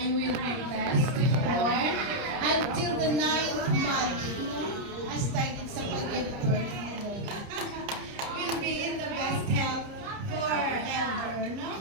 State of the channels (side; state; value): left; late; 30 ms